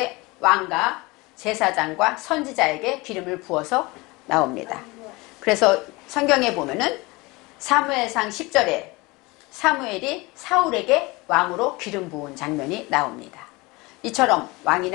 왕과 제사장과 선지자에게 기름을 부어서 나옵니다. 그래서 성경에 보면은 사무엘상 10절에 사무엘이 사울에게 왕으로 기름 부은 장면이 나옵니다. 이처럼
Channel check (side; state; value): right; quieter; 23.8 dB